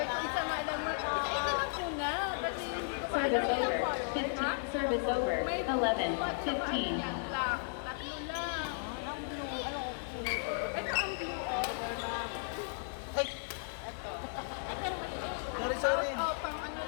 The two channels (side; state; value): right; silent; digital silence